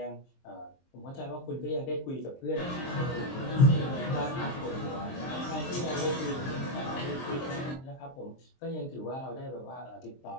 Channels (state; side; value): late; right; 23 ms